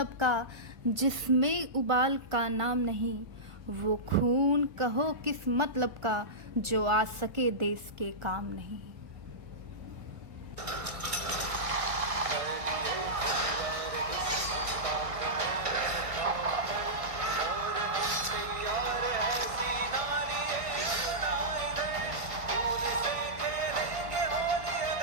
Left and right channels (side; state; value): left; late; 1.5 ms